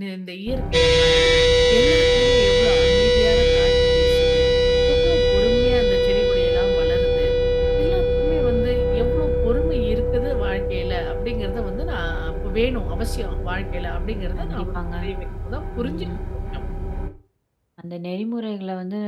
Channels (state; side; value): identical; both; correlation 1.00